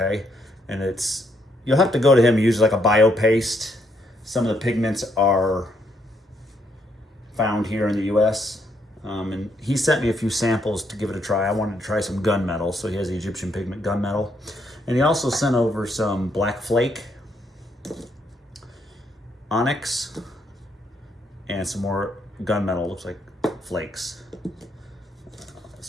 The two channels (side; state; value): both; normal; correlation 0.74